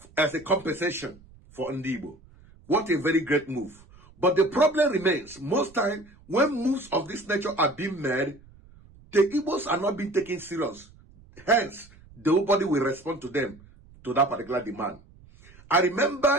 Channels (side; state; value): right; noise; rumble, 25 dB below the sound